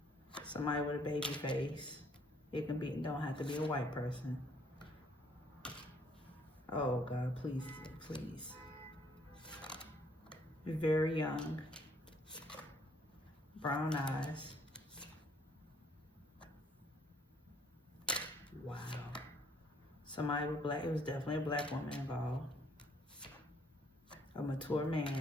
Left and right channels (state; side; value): normal; both; correlation 0.64